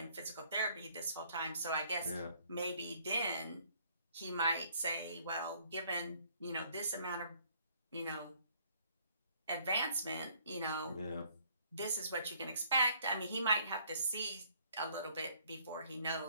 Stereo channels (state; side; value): inverted; both; correlation -0.62